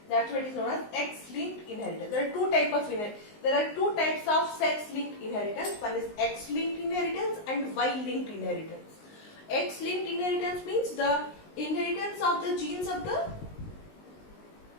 that's what is known as X-linked inheritance. There are two types of sex-linked inheritance. One is X-linked inheritance and Y-linked inheritance. X-linked inheritance means the inheritance of the genes of the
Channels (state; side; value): late; right; 19 ms